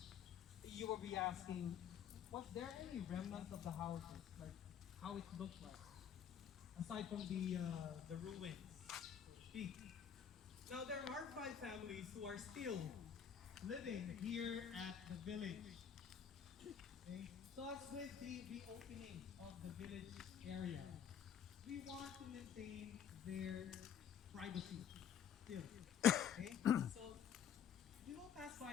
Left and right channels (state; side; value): quieter; right; 8.3 dB